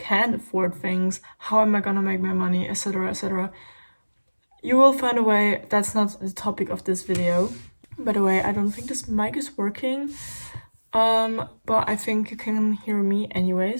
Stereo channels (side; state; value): both; inverted; correlation -1.00